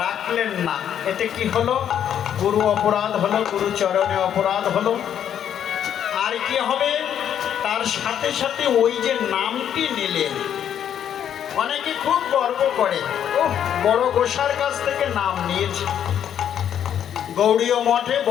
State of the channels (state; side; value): quieter; right; 9.5 dB